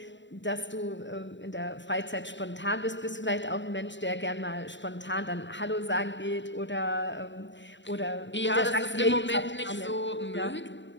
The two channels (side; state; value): right; late; 0.53 ms